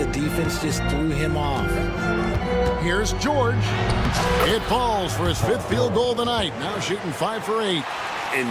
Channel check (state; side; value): identical; both; correlation 1.00